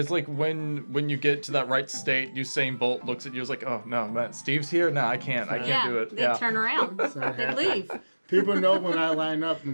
like when you get to that right state, Usain Bolt looks at you, is like, oh no, man, Steve's here. No, I can't do it. They turn around. not They happening. leave. People know when I line up,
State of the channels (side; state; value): both; inverted; correlation -1.00